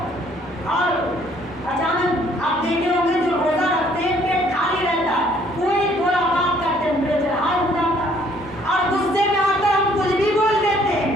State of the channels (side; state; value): both; normal; correlation 0.62